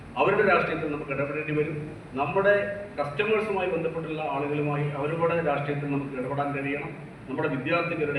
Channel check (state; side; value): identical; both; correlation 1.00